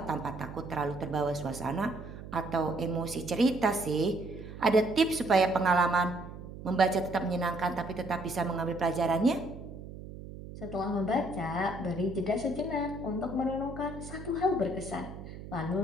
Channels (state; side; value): noise; right; hum, 12 dB below the sound